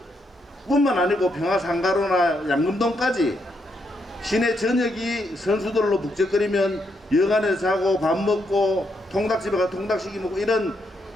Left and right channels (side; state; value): both; normal; correlation 0.78